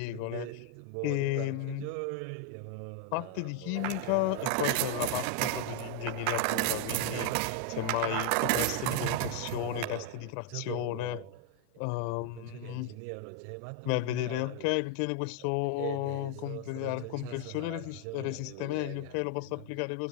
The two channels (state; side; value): different; both; correlation 0.00